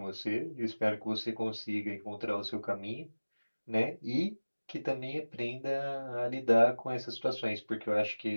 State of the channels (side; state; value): both; inverted; correlation -1.00